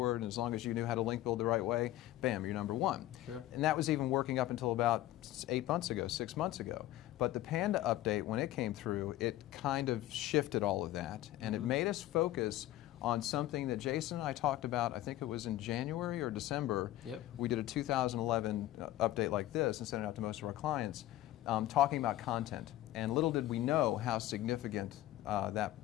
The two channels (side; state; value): right; quieter; 14.9 dB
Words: and as long as you knew how to link build the right way, bam, you're #1. Sure. And that was even working up until about 8 months ago, 6 months ago. But the Panda update, when it came through, it kind of shifted all of that, and it made us focus on something that Jason and I talked about. I think it was in January or December. Yep. We did a 2011 update like this and sent it out to most of our clients, talking about content. And little did we know how significant that